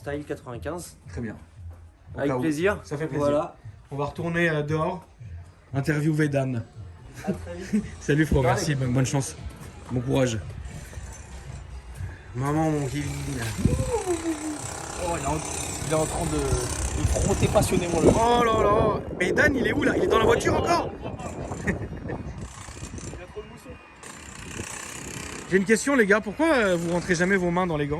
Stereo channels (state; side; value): identical; both; correlation 1.00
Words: 95. Très bien. Au Avec cas où. plaisir. Ça fait plaisir. Voilà. On va retourner dehors, interviewer Dan. À très vite. Salut, frérot, merci, bonne chance. Bon courage. Maman, mon Kevin. Oh, il est en train de frotter passionnément le. Oh là là. Mais Dan, il est où là? Il est dans la voiture encore? J'ai une question, les gars. Pourquoi vous rentrez jamais vos mains dans les